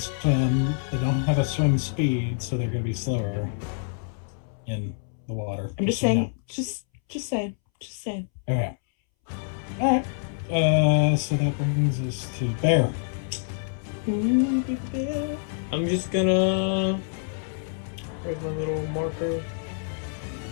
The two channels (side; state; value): right; silent; 61 dB below the other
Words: They don't have a swim speed, so they're going to be slower in the water. I'm just saying. Just saying. Just saying. Okay. All right. So that brings us to Bear. Ooh, big bear. I'm just gonna. Where's my little marker?